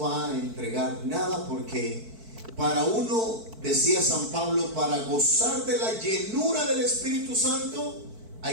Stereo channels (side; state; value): left; late; 4.5 ms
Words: a entregar nada, porque para uno, decía San Pablo, para gozar de la llenura del Espíritu Santo